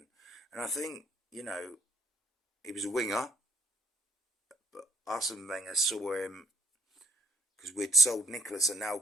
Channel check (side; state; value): both; normal; correlation 0.60